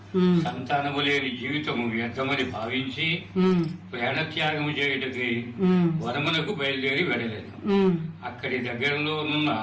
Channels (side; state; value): both; identical; correlation 1.00